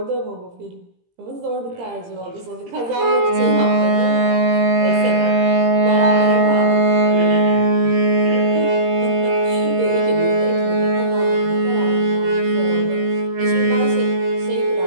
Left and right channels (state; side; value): late; left; 17 ms